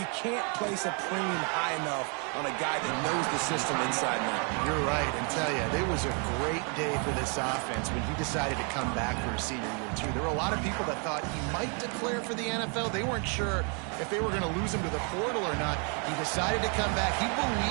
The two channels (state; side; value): quieter; left; 37.5 dB